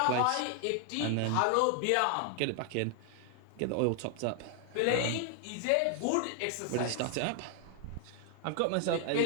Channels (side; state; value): both; different; correlation 0.00